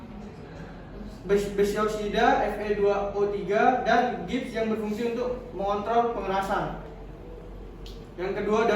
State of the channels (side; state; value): both; identical; correlation 1.00